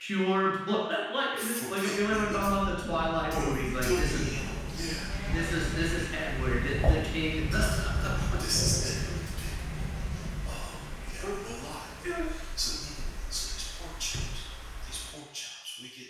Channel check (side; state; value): both; identical; correlation 1.00